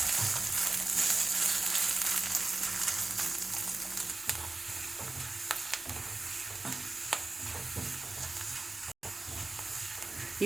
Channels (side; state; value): left; quieter; 3.3 dB